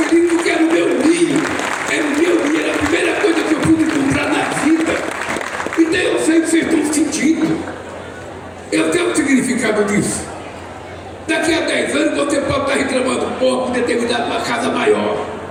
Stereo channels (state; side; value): identical; both; correlation 1.00